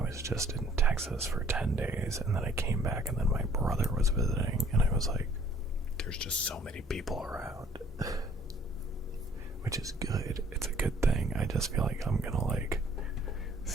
just in Texas for 10 days and then I came back and then my brother was visiting and I was like, there's just so many people around. Which is good. it's a good thing. I just feel like I'm gonna like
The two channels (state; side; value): normal; both; correlation 0.58